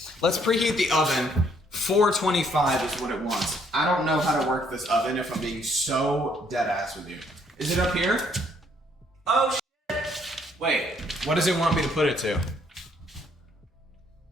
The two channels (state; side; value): normal; both; correlation 0.67